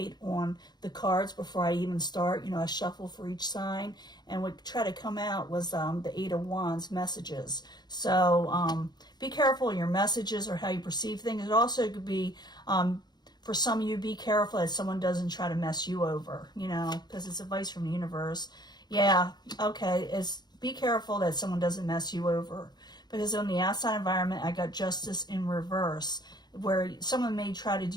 on the cards before I even start. You know, I shuffle for each sign, and what try to come out was the Eight of Wands messages. So be careful of your messages or how you perceive things. It also could be for some of you, be careful that someone doesn't try to mess you over, you know, because it's advice from the universe. Yeah, okay, be careful that someone doesn't mess you over. Because on the outside environment, I got Justice in reverse, where someone may try to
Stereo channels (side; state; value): right; late; 0.20 ms